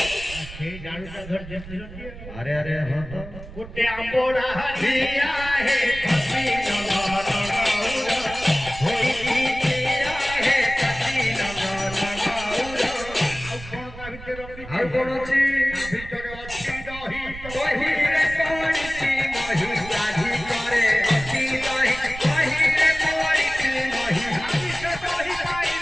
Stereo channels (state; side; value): noise; right; rumble, 13 dB below the sound